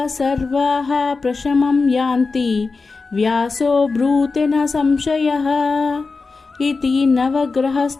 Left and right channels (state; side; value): quieter; right; 4.2 dB